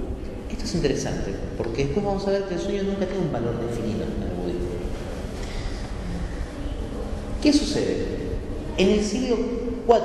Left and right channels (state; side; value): identical; both; correlation 1.00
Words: Esto es interesante, porque después vamos a ver que el sueño nunca tiene un valor definido en el budismo. ¿Qué sucede? En el siglo